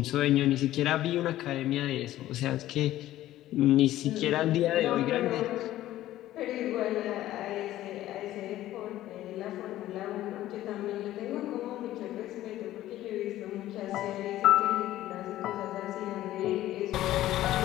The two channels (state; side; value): quieter; right; 14.2 dB